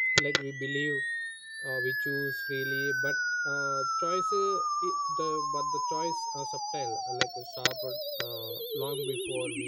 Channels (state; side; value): identical; both; correlation 1.00